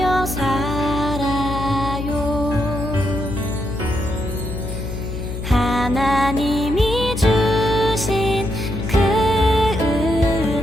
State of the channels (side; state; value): left; noise; hum, 6 dB below the sound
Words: 살아요. 하나님이 주신 그